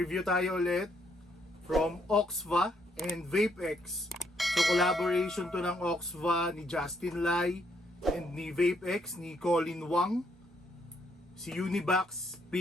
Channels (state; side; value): normal; both; correlation 0.72